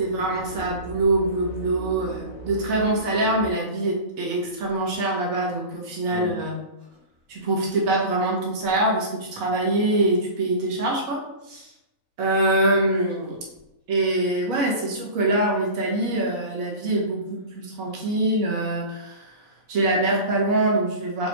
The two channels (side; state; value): left; late; 4.0 ms